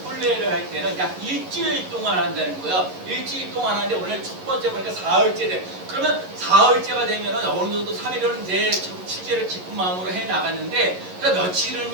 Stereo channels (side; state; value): left; late; 11 ms